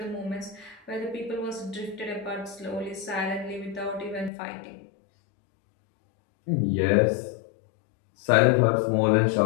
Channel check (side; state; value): right; drops out; at 4.3 s